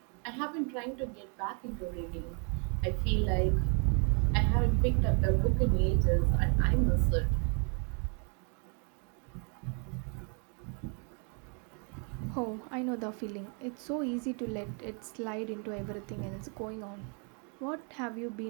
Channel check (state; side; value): quieter; left; 38.8 dB